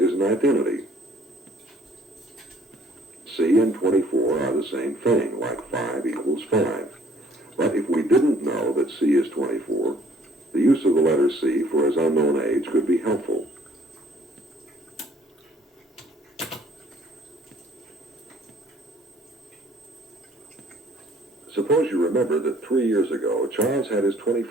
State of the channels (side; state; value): both; normal; correlation 0.59